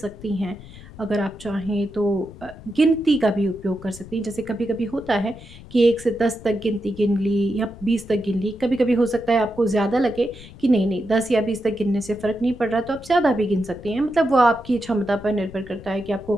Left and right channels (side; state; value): left; noise; rumble, 17 dB below the sound